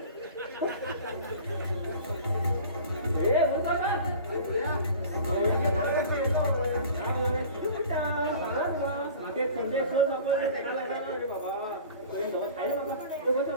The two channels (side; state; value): both; inverted; correlation -0.42